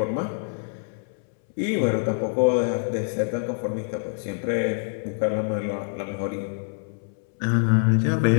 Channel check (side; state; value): right; silent; 62 dB below the other